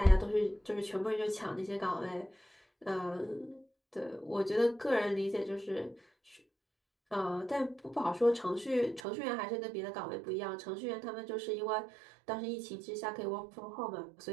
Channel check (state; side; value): drops out; left; at 9.0 s